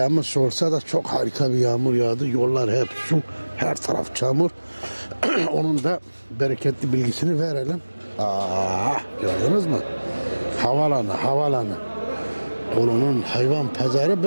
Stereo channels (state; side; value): inverted; both; correlation -1.00